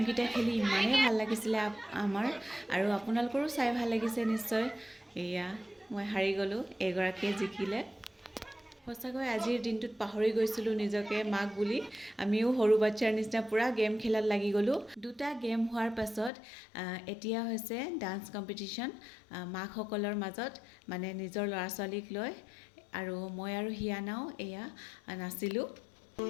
খেলি ইমানেই ভাল লাগিছিলে আমাৰ, আৰু আপোনালোকৰো চাই ভাল লাগিছে নিশ্চয়। এয়া মই হাৰি গ'লোঁ, এগৰাকীয়ে জিকিলে। সঁচাকৈ আজিৰ দিনটোত পাহৰি গৈছিলোঁ নিজকে মাক বুলি। আমিও সৰু বাচ্ছাৰ নিচিনা পূৰা গেম খেলাত লাগি গ'লোঁ। দুটা গেম হোৱাৰ পাছত এতিয়া হৈছে ডান্স কম্পিটিশ্যন মাকসকলৰ মাজত, মানে নিজৰ ল'ৰা ছোৱালীক লৈ। আৰু মই আৰু হিয়ানাও এয়া নাচিলোঁ।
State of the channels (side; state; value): right; drops out; at 16.3 s